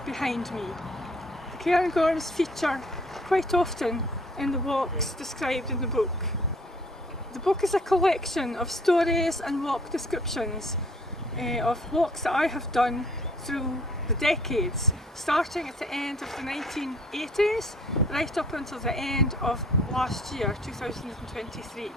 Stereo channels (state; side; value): normal; both; correlation 0.58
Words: behind me. The Cairngorms feature quite often in the walks described in the book. The book is a collection of stories and walk descriptions of walks that I have done through the decades, starting at the end of the 1980s right up until the end of last year, 2023.